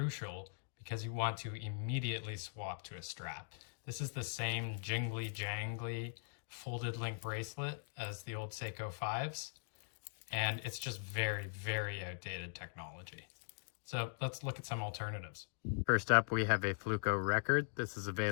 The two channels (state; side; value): silent; right; digital silence